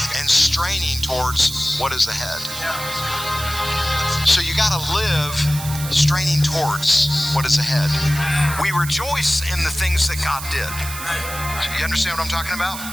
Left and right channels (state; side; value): noise; right; hiss, 9 dB below the sound